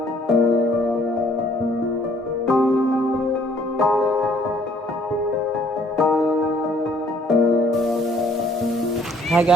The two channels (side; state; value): both; normal; correlation 0.61